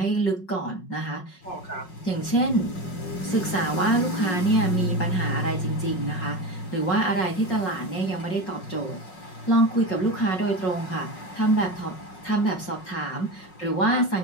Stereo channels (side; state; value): right; late; 5.4 ms